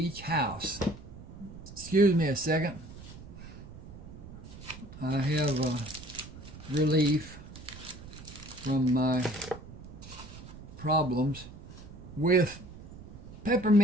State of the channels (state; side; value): noise; right; rumble, 15 dB below the sound